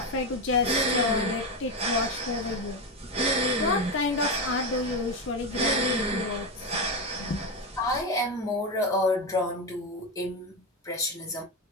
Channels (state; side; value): normal; both; correlation 0.13